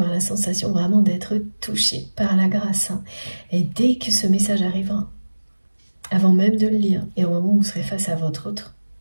la sensation vraiment d'être touché par la grâce. Et dès que ce message arrivera, avant même de le lire, et au moment où vous serez face à votre autre,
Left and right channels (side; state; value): both; inverted; correlation -1.00